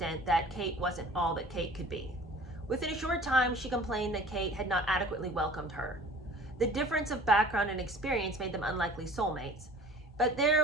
that Kate wasn't all that Kate could be. Within a short time, she complained that Kate had not adequately welcomed her. The difference of background and experience made them unlikely soulmates, but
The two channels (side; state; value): both; normal; correlation 0.46